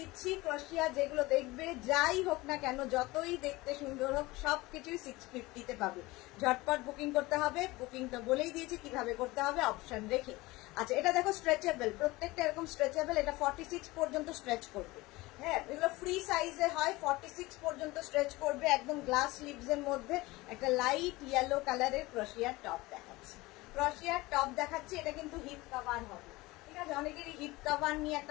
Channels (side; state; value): right; quieter; 20.9 dB